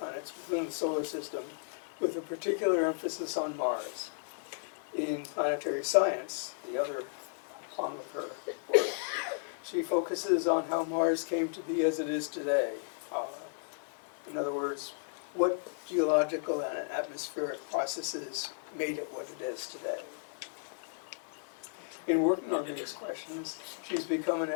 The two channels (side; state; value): right; silent; 55 dB below the other